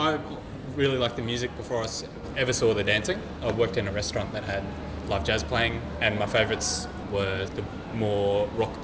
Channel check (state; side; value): identical; both; correlation 1.00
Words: really liked the music before I ever saw the dancing. I worked in a restaurant that had live jazz playing, and my favourites were the more rock